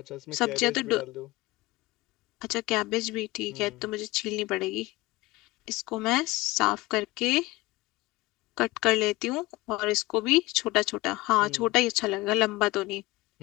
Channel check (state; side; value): quieter; right; 20.2 dB